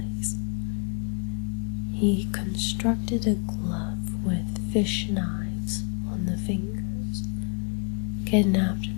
He constructed a glove with fish knives on the fingers, kidnapped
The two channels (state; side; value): quieter; right; 37.1 dB